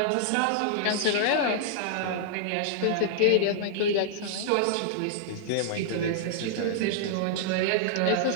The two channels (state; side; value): different; both; correlation -0.01